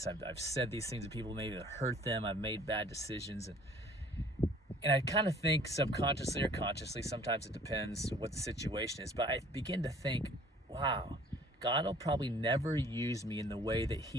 I've said these things to people, maybe that hurt them. I've made bad decisions. And I kind of think subconsciously or consciously, sometimes it depends what the situation is, but I begin to think, wow, God will probably never use me in the way that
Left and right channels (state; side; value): normal; both; correlation 0.53